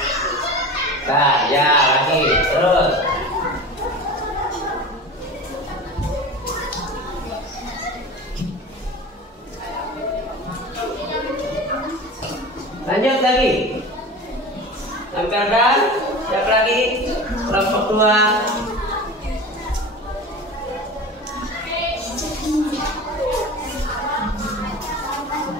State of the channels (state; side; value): normal; both; correlation 0.33